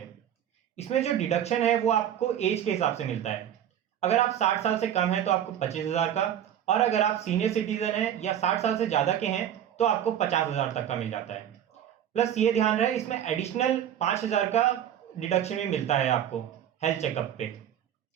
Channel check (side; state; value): left; quieter; 10.2 dB